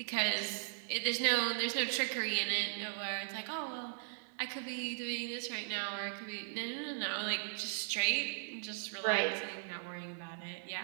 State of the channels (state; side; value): silent; left; digital silence